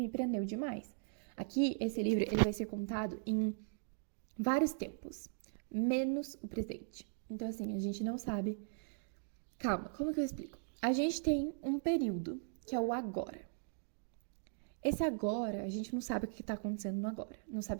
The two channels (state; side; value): silent; left; digital silence